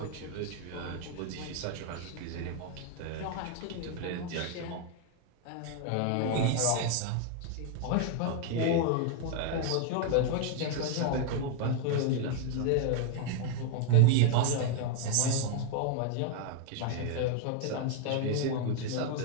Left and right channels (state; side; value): different; both; correlation 0.00